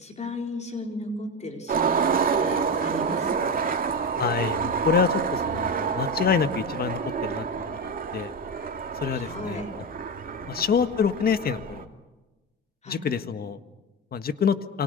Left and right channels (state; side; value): normal; both; correlation 0.17